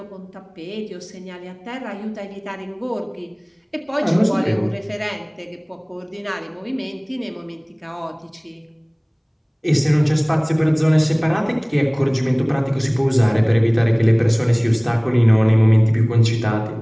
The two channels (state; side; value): identical; both; correlation 1.00